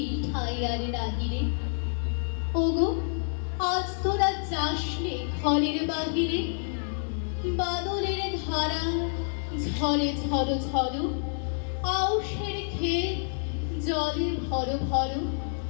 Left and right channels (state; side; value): silent; right; digital silence